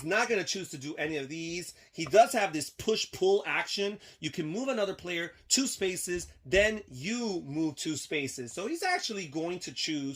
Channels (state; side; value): identical; both; correlation 1.00